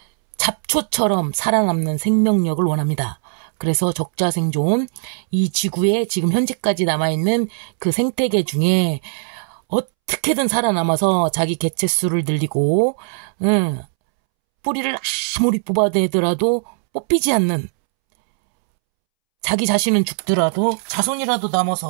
잡초처럼 살아남는 생명력을 원합니다. 그래서 적자생존, 이 지구에 지금 현재까지 남아있는 그 생태계 중에 어떻게든 살아남아서 자기 개체수를 늘리고 뿌리를 아무리 뽑아내더라도 뽑히지 않는 자기 자신은 죽더라도 자손이라도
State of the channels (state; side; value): silent; left; 66 dB below the other